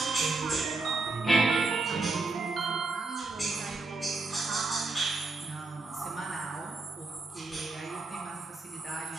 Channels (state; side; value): quieter; left; 3.6 dB